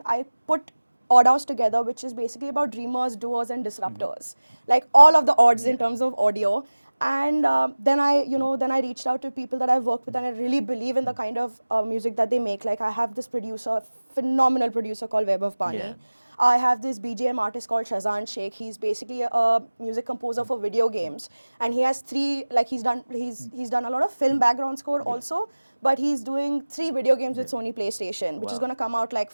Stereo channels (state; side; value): inverted; both; correlation -1.00